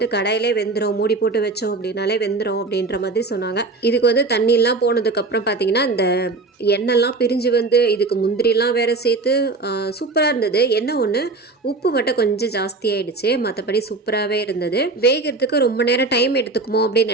கடாயிலே வெந்துடும், மூடி போட்டு வச்சோம் அப்படின்னாலே வெந்துடும் அப்படின்ற மாதிரி சொன்னாங்க. இதுக்கு வந்து தண்ணியெலாம் போனதுக்கப்புறம் பார்த்திங்கன்னா இந்த எண்ணெய்லாம் பிரிஞ்சு வந்து இதுக்கு முந்திரிலாம் வேறு சேர்த்து சூப்பராக இருந்தது. என்ன ஒன்று உப்பு மட்டும் கொஞ்சம் ஜாஸ்தி ஆகிடுச்சு, மற்றபடி சூப்பராகவே இருந்தது. வேகிறதுக்கு ரொம்ப நேரம் டைம் எடுத்துக்குமோ அப்படின்னு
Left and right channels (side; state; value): left; quieter; 3.6 dB